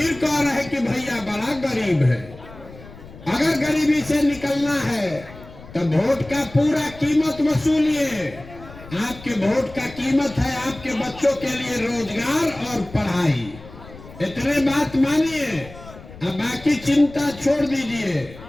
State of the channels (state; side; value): noise; left; rumble, 18 dB below the sound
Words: कह रहे कि भैया बड़ा गरीब है। अगर गरीबी से निकलना है तो वोट का पूरा कीमत वसूलिए। आपके वोट का कीमत है आपके बच्चों के लिए रोजगार और पढ़ाई। इतने बात मानिए, अब बाकी चिंता छोड़ दीजिए।